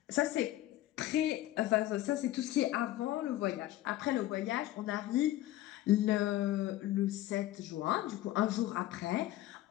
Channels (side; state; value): right; quieter; 14.9 dB